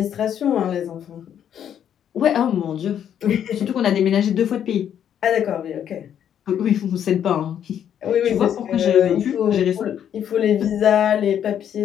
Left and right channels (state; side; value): quieter; right; 9.4 dB